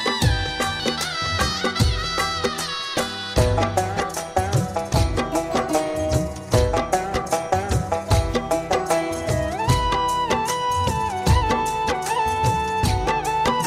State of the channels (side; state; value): both; identical; correlation 1.00